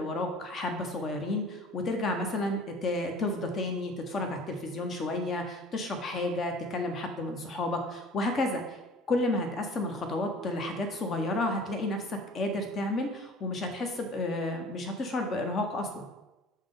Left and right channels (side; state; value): both; normal; correlation 0.45